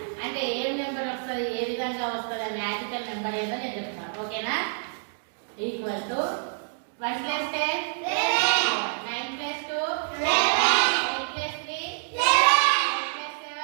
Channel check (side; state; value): left; silent; digital silence